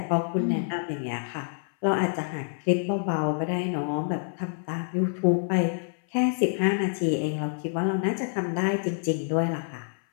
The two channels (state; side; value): silent; right; 58 dB below the other